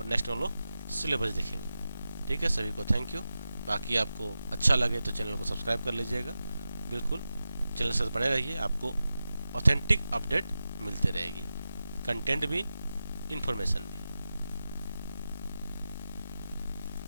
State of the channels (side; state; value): both; inverted; correlation -0.92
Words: नेक्स्ट हम लोग सिलेबस देखेंगे। ठीक है, सभी को थैंक यू। बाकी आपको अच्छा लगे तो चैनल को सब्सक्राइब कर लीजिएगा। बिल्कुल चैनल से बने रहिए, आपको ऑथेंटिक अपडेट मिलते रहेगी, कंटेंट भी, इंफॉर्मेशन भी।